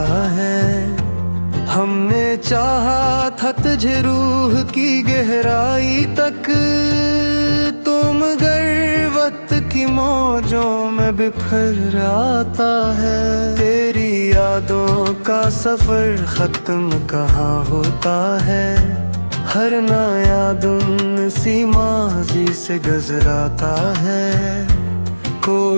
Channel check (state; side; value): inverted; both; correlation -1.00